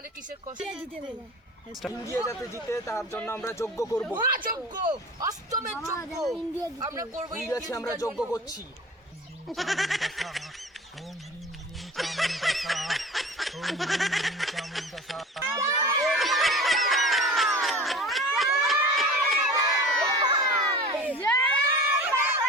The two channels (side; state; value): both; normal; correlation 0.38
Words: কিসের কষ্ট? ইন্ডিয়া যাতে জিতে তার জন্য আমরা যজ্ঞ করব। যোগ্য অষ্টমের যোগ্য আমরা করবো, ইন্ডিয়াকে আমরা যজ্ঞ করছি।